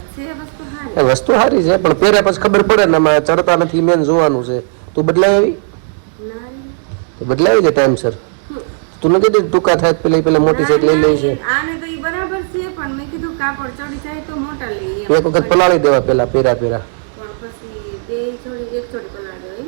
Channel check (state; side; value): silent; left; digital silence